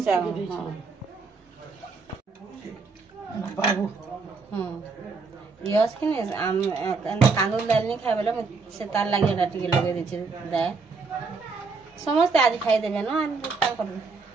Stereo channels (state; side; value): quieter; left; 4.4 dB